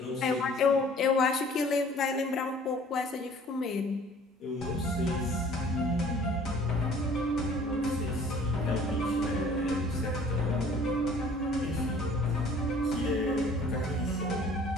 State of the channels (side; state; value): both; normal; correlation 0.52